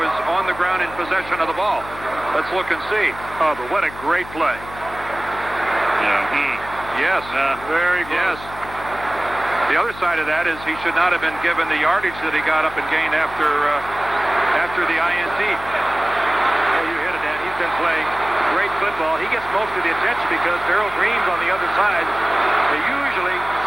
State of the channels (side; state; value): left; noise; hum, 15 dB below the sound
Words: on the ground in possession of the ball? Let's look and see. Oh, but what a great play. Yeah. Yes. Very close. Yes. The other side of that is he should not have been given the yardage that he got up and gained after the INT. Well, you hit it, Dan. He's been playing great football. He gets most of the attention because Darrell Green's on the other side. They usually